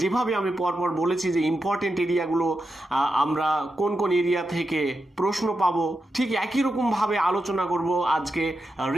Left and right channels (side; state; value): both; normal; correlation 0.88